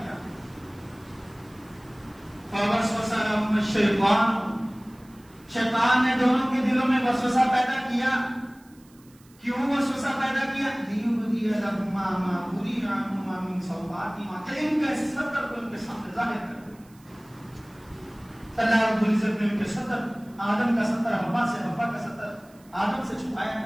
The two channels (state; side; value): noise; right; hiss, 29 dB below the sound